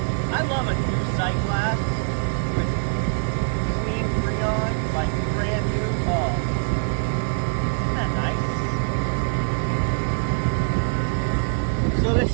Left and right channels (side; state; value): left; silent; digital silence